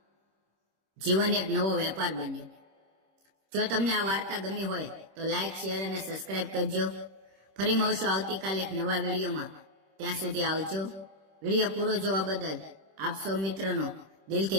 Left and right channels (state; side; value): late; left; 26 ms